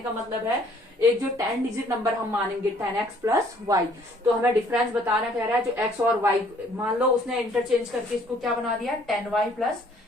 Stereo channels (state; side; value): normal; both; correlation 0.60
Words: का मतलब है एक जो 10 डिजिट नंबर हम मानेंगे 10x प्लस वाई, तो हमें डिफरेंस बताना कह रहा है जो x और y, मान लो उसने इंटरचेंज करके इसको क्या बना दिया, 10y प्लस